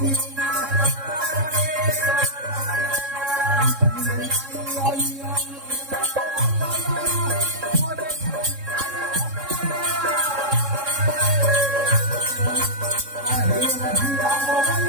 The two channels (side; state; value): left; late; 3.7 ms